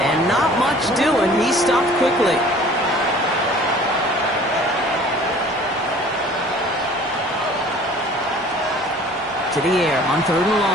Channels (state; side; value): normal; both; correlation 0.49